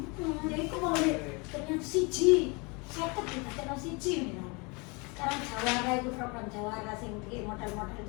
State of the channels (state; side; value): quieter; right; 29.4 dB